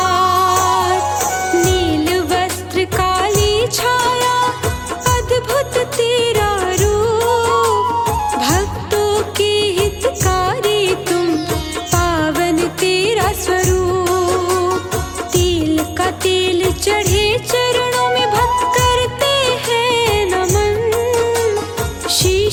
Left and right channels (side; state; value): both; identical; correlation 1.00